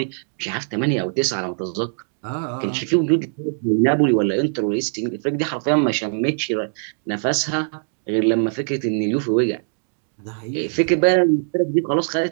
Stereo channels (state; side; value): silent; left; 64 dB below the other